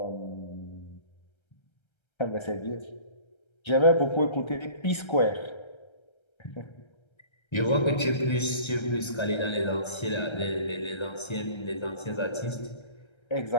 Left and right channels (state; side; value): late; right; 1.3 ms